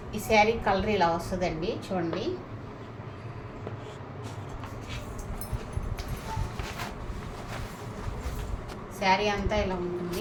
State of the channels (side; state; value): both; identical; correlation 1.00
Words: ఈ శారీ కలర్ ఇలా వస్తుందండి. చూడండి, శారీ అంతా ఇలా